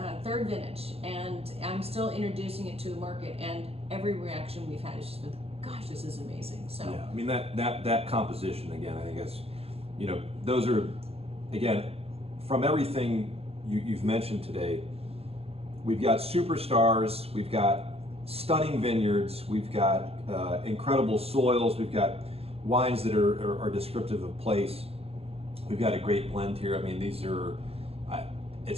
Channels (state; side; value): late; left; 0.29 ms